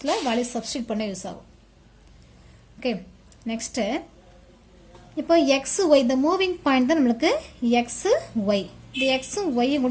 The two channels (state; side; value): identical; both; correlation 1.00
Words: வேல்யூ சப்ஸ்டிட் பண்ண யூஸ் ஆகும். ஓகே, நெக்ஸ்ட்டு இப்போ எக்ஸ் ஒய், இந்த மூவிங் பாயிண்ட் தான் நம்மளுக்கு எக்ஸ் ஒய். இந்த எக்ஸும் ஒய்யும்